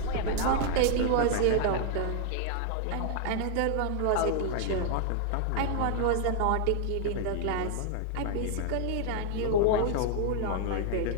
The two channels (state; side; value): different; both; correlation 0.00